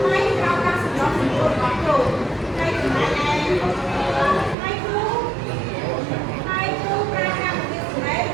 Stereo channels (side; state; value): left; drops out; at 4.5 s